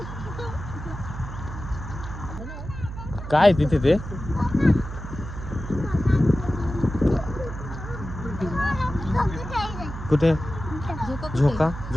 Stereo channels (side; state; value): right; noise; hum, 9 dB below the sound